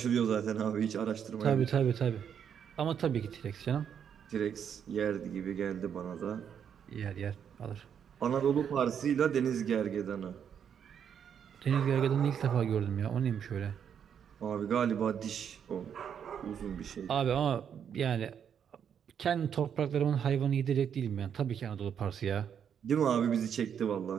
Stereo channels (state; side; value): quieter; left; 8.1 dB